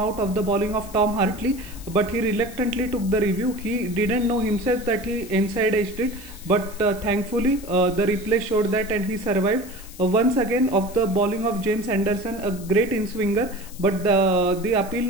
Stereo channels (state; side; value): noise; left; hiss, 18 dB below the sound